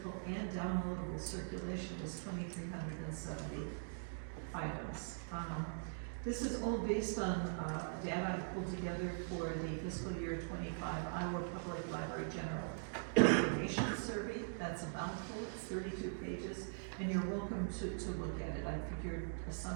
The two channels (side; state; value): left; silent; digital silence